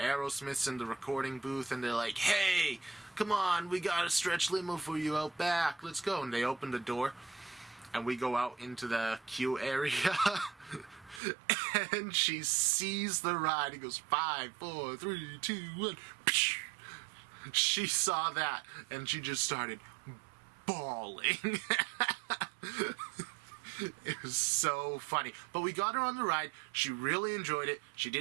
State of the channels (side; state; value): left; drops out; at 11.2 s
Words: in the recording booth and they're like, hey, come on, we got a stretch limo for you out back. Let's go. And they open the door and we go out into the queue area and she sees the ride. It goes 5, 4, 3, 2, 1. She saw that and she just started bawling. It was so funny. But we got her on the ride. She really enjoyed it. She